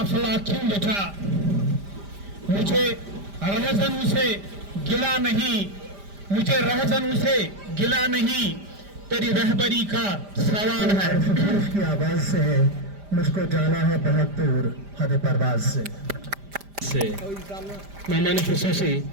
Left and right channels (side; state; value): left; late; 5.0 ms